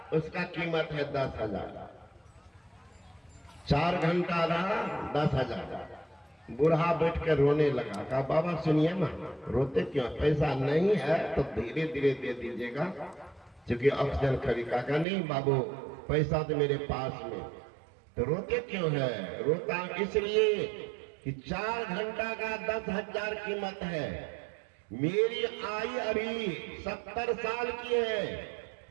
उसका कीमत है 10,000। 4 घंटा रहा 10,000। बूढ़ा बैठ कर रोने लगा। कहा बाबा सुनिए ना, रोते क्यों, पैसा नहीं है तो धीरे धीरे दे दीजिएगा, क्योंकि ऑक्सीजन खरीदा। कहा नहीं बाबू पैसा तो मेरे पास में। तो रोते क्यों है, रोता इसलिए कि 4 घंटा का 10,000 कीमत है। मेरी आयु अभी 70 साल की है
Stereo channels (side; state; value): left; drops out; at 15.1 s